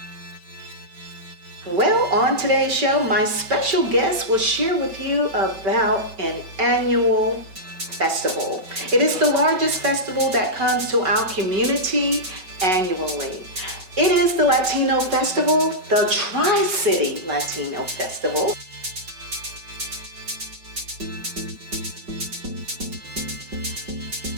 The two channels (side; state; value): left; late; 5.3 ms